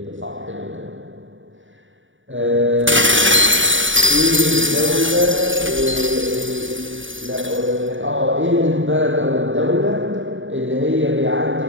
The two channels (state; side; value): late; left; 0.56 ms